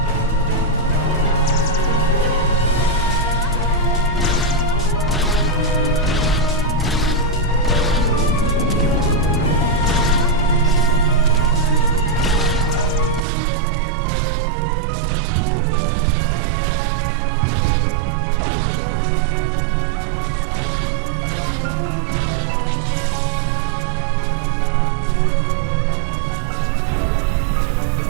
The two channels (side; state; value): left; drops out; at 13.2 s